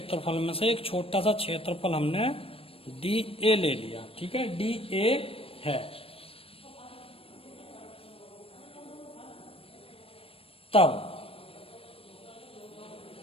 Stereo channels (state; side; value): late; right; 0.28 ms